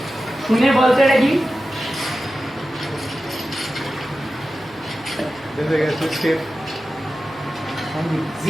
শুনে বলতে নাকি এসে গেছে শেফ।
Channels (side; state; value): right; noise; hum, 24 dB below the sound